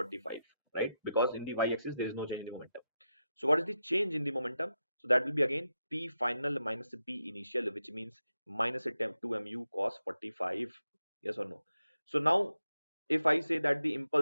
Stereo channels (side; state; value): both; inverted; correlation -0.87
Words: right? Because in the y-axis there is no change in the momentum. So what is the change in the momentum? So that will be again p final minus p initial, which means minus 2 mu cos 45. Yes or no? So now if I say that the